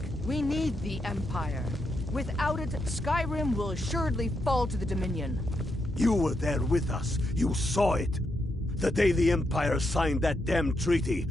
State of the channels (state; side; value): normal; both; correlation 0.82